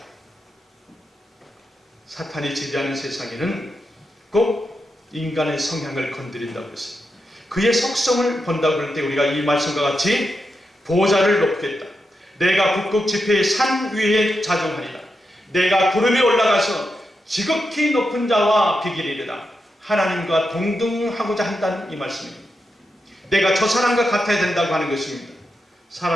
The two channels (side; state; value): both; normal; correlation 0.87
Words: 사탄이 지배하는 세상에는 꼭 인간의 성향을 건드린다고 했어요. 그의 속성을 본다고 할 때 우리가 이 말씀과 같이 보좌를 높겠다. 내가 북극 지폐의 산 위에 자정하리라. 내가 구름에 올라가서 지극히 높은 자와 비기리리라. 하나님과 동등하고자 한다는 이 말씀입니다. 내가 저 사람과 같아야 된다고 하는 것입니다.